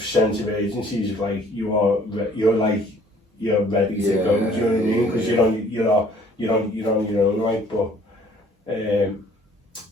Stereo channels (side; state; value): both; normal; correlation 0.57